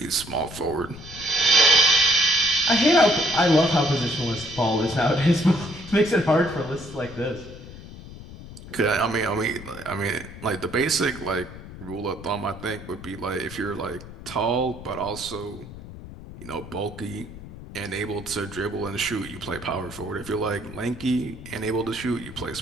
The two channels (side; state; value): left; noise; rumble, 14 dB below the sound